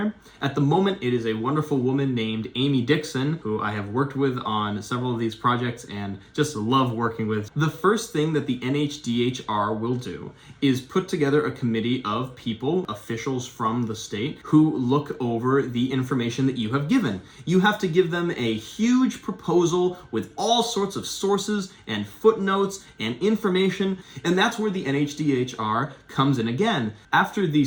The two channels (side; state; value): both; identical; correlation 1.00